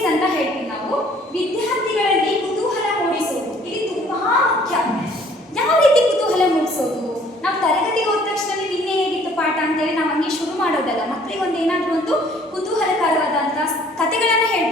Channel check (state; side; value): normal; both; correlation 0.57